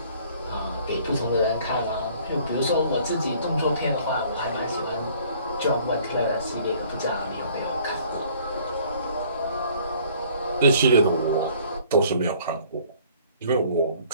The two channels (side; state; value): both; inverted; correlation -0.56